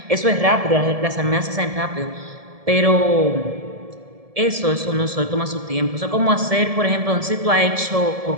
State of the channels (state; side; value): late; left; 1.7 ms